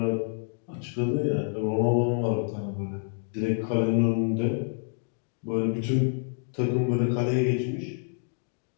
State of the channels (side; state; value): right; silent; 58 dB below the other